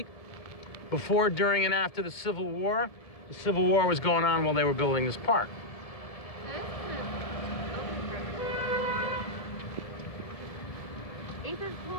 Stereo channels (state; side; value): late; right; 1.7 ms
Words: Before, during, and after the Civil War. The Civil War was going on while they were building this park. This